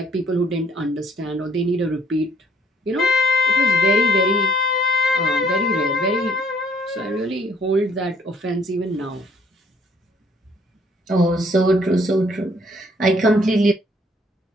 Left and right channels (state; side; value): normal; both; correlation 0.62